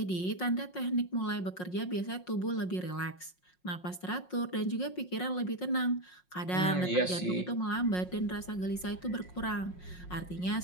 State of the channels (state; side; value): late; right; 5.5 ms